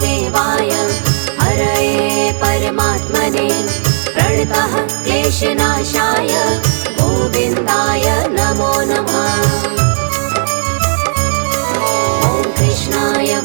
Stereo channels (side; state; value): left; silent; digital silence